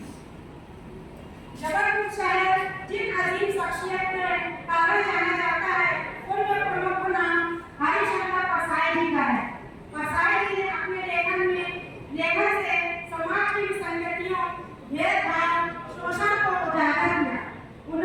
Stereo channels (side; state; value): both; identical; correlation 1.00